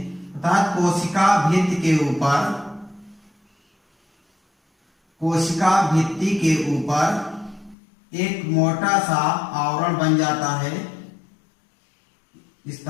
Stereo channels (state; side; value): drops out; right; at 7.8 s